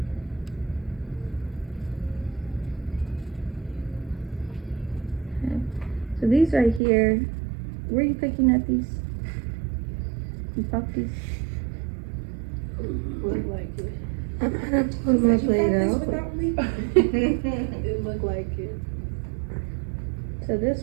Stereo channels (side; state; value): left; drops out; at 6.8 s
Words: Okay. So these right here, were you picking at these? You popped these? Looked like it. I'm gonna pull my blade out. It looked like it. So